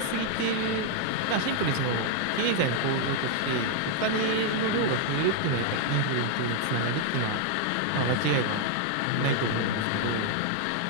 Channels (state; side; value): different; both; correlation 0.00